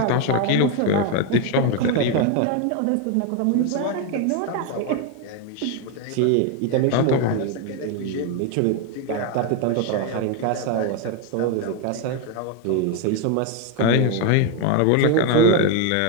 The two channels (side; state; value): both; different; correlation 0.02